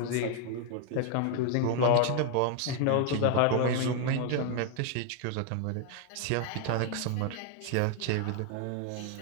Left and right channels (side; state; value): both; different; correlation 0.00